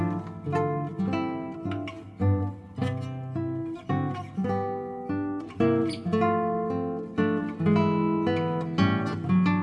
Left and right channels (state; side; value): identical; both; correlation 1.00